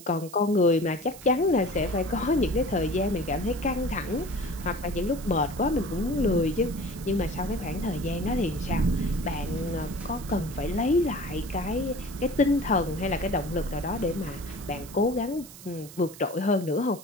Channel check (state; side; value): noise; right; hiss, 17 dB below the sound